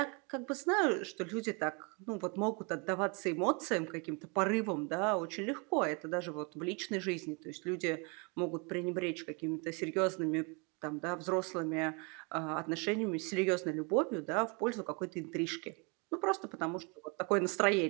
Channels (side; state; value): left; quieter; 32.3 dB